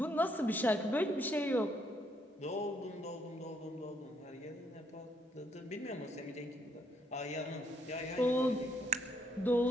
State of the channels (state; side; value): normal; both; correlation 0.71